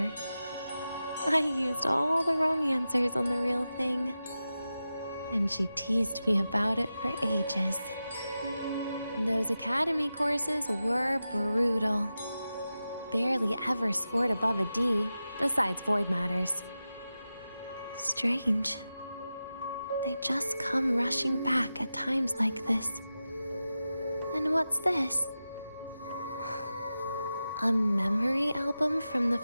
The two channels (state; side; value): inverted; both; correlation -0.92